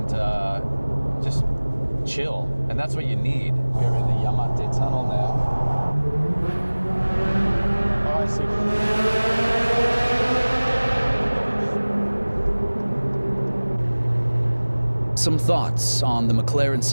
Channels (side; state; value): both; inverted; correlation -1.00